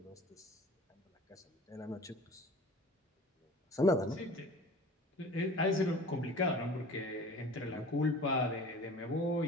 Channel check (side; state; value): both; normal; correlation 0.43